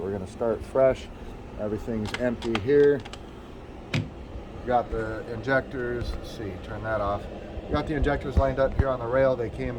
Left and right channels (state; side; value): identical; both; correlation 1.00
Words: we're going to start fresh. Everything's empty here. We've got the injectors. Let's see, turn that off. We've got the injectors lined up here on the rail. They came